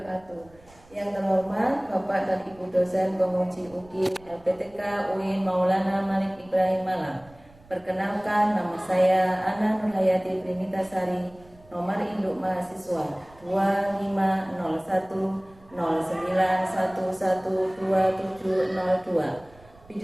Yang terhormat Bapak dan Ibu dosen penguji UGI LPTK UIN Maulana Malik Ibrahim Malang. Perkenalkan, nama saya Ana Nurhayati Primitasari, nomor induk mahasiswa 250109112702,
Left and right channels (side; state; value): right; noise; rumble, 26 dB below the sound